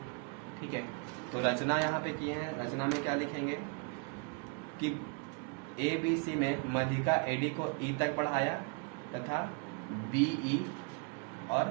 ठीक है। तो रचना यहाँ पे किए हैं। रचना में क्या लिखेंगे कि ABC में मध्यिका AD को E तक बढ़ाया तथा BE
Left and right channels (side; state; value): left; quieter; 34.9 dB